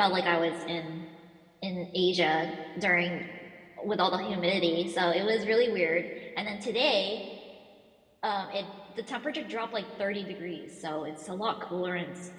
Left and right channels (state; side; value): identical; both; correlation 1.00